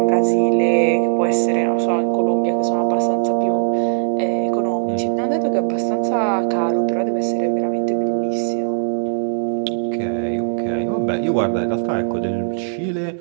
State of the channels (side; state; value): left; silent; digital silence